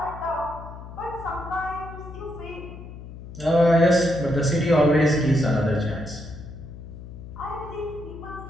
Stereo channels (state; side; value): noise; left; hum, 13 dB below the sound